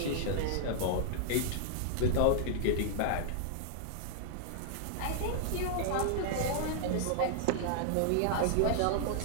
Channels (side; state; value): both; different; correlation -0.01